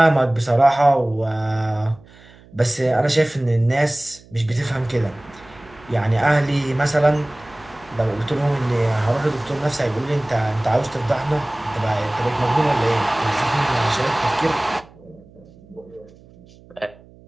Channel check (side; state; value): right; noise; hum, 25 dB below the sound